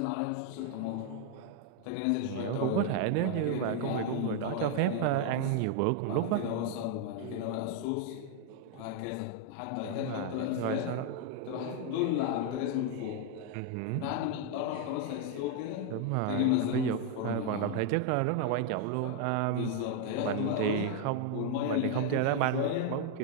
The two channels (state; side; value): different; both; correlation 0.01